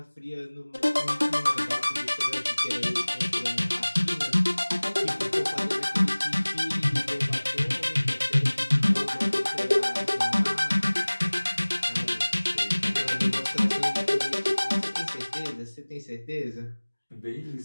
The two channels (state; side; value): inverted; both; correlation -1.00